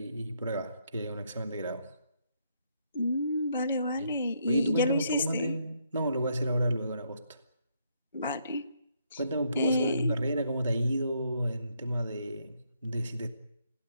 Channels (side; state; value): both; inverted; correlation -0.74